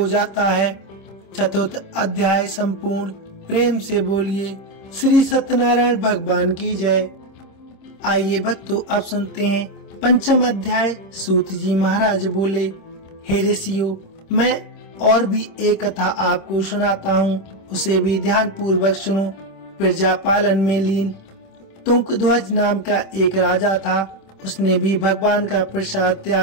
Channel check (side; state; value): right; late; 26 ms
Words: जाता है। चतुर्थ अध्याय संपूर्ण। प्रेम से बोलिए श्री सत्यनारायण भगवान की जय। आइए भक्तों, अब सुनते हैं पंचम अध्याय। सूत जी महाराज बोले, हे ऋषियों, मैं और भी एक कथा आपको सुनाता हूँ, उसे भी ध्यान पूर्वक सुनो। प्रजा पालन में लीन तुंगध्वज नाम का एक राजा था। उसने भी भगवान का प्रसाद